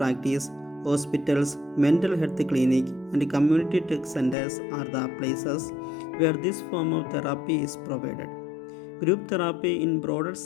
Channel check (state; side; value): drops out; right; at 4.4 s